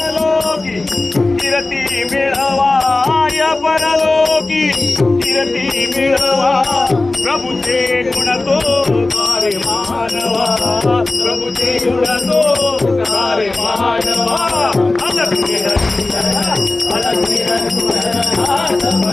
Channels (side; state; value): right; quieter; 3.1 dB